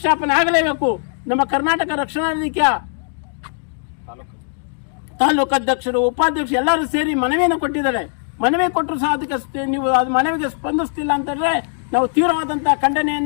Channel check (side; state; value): right; silent; digital silence